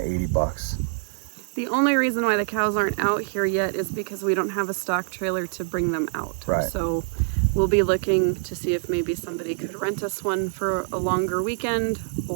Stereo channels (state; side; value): silent; left; 62 dB below the other